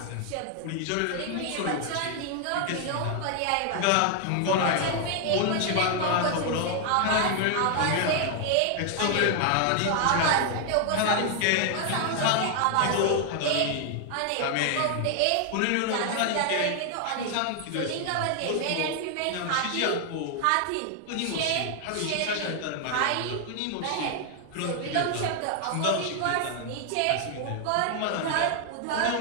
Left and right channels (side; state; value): both; different; correlation 0.00